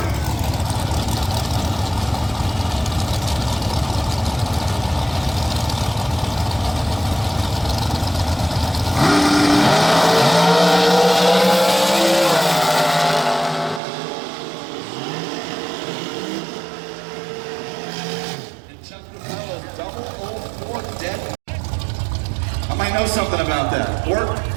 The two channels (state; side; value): drops out; left; at 13.8 s